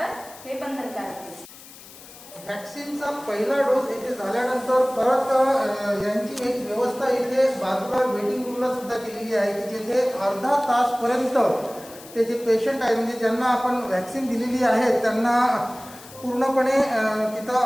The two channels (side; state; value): left; noise; hiss, 19 dB below the sound